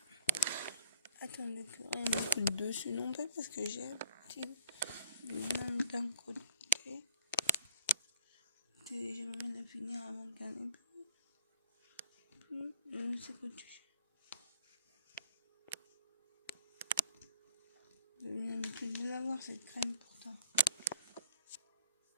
Attendez que rien ne coûte dessus non plus parce que j'ai un petit même d'un côté. J'aimerais la finir avant de gagner. C'est quoi tu J'ai l'habitude de l'avoir cette crème pourtant.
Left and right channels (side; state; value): both; inverted; correlation -0.56